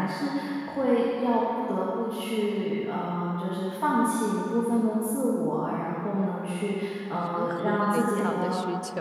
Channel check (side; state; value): both; identical; correlation 1.00